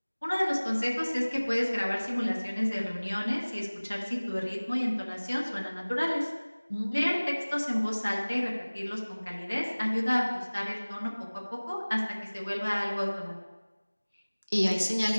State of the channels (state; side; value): inverted; both; correlation -1.00